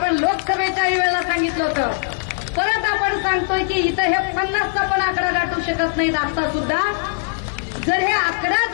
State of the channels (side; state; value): right; silent; 66 dB below the other